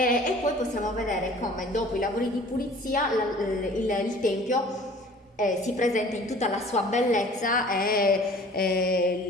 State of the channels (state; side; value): normal; both; correlation 0.48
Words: poi possiamo vedere come dopo i lavori di pulizia il tempio si presenta in tutta la sua bellezza